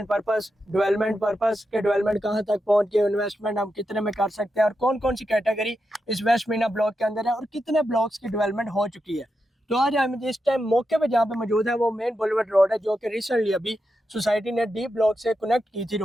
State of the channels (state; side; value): normal; both; correlation 0.87